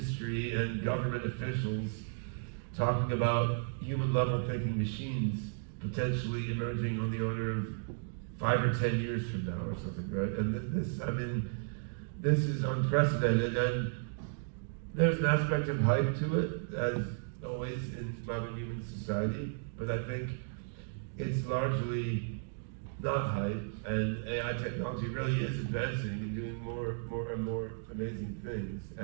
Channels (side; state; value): left; silent; digital silence